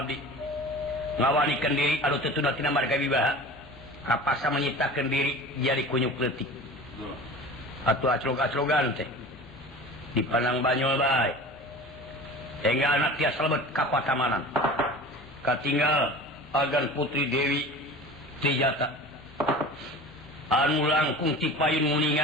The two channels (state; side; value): noise; left; hum, 25 dB below the sound